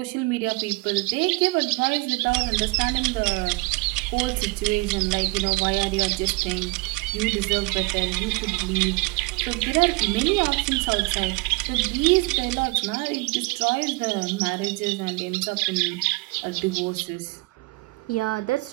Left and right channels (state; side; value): quieter; left; 25.5 dB